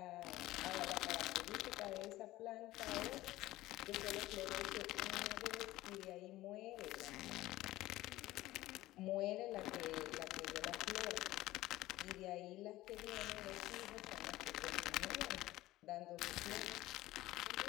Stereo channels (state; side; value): quieter; right; 16.9 dB